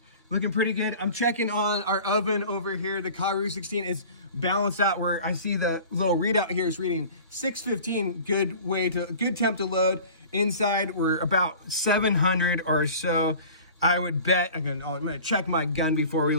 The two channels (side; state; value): both; inverted; correlation -0.43